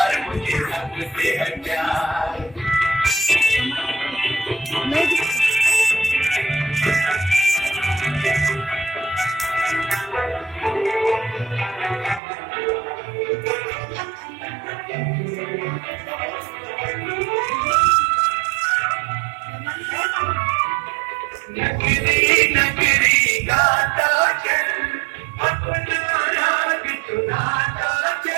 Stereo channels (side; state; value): left; drops out; at 12.2 s